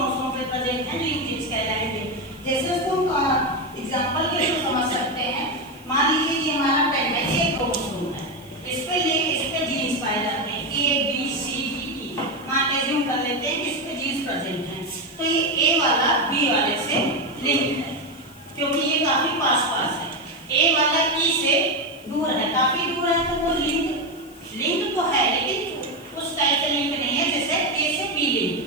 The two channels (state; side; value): noise; left; hiss, 24 dB below the sound